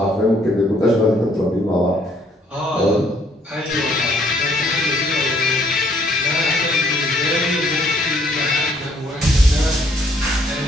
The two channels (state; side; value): normal; both; correlation 0.66